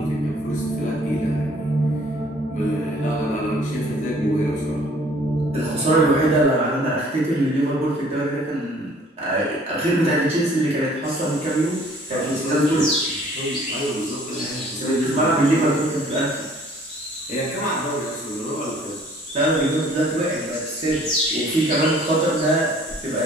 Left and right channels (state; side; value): normal; both; correlation 0.55